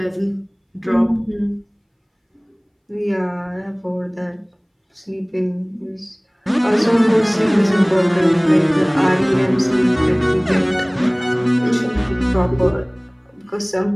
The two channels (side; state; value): both; identical; correlation 1.00